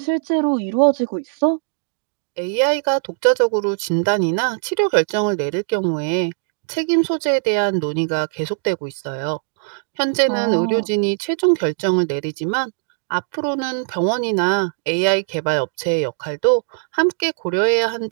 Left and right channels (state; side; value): silent; left; digital silence